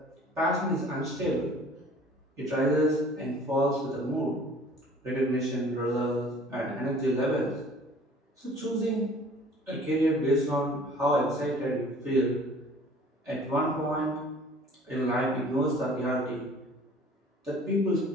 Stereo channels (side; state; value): both; normal; correlation 0.50